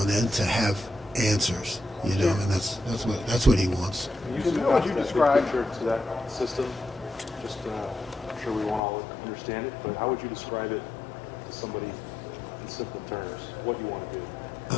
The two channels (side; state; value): right; drops out; at 8.8 s